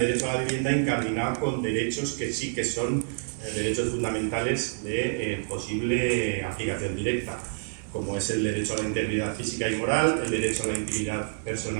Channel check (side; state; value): left; silent; digital silence